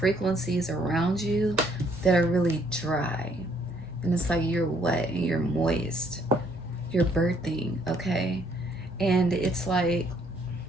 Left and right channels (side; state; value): both; normal; correlation 0.66